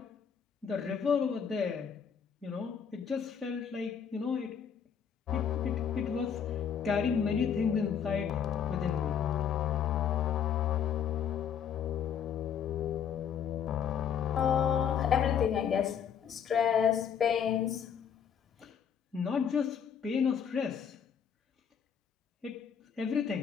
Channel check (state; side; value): quieter; right; 7.8 dB